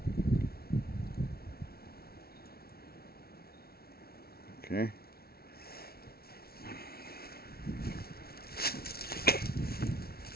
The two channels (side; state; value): right; late; 0.44 ms